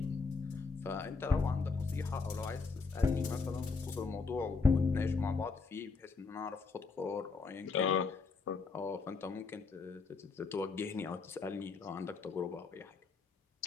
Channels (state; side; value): quieter; right; 4.6 dB